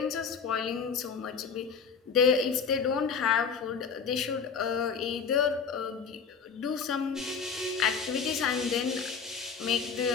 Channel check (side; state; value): right; quieter; 6.0 dB